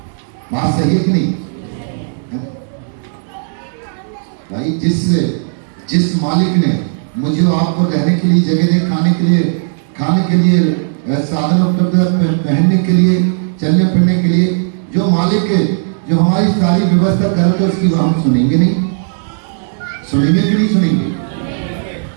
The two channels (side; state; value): left; silent; digital silence